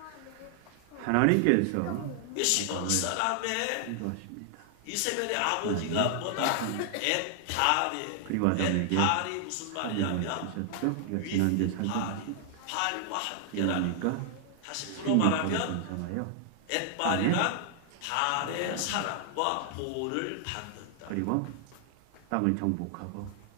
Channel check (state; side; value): different; both; correlation 0.00